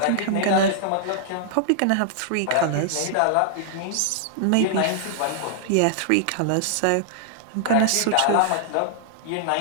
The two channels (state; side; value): different; both; correlation -0.01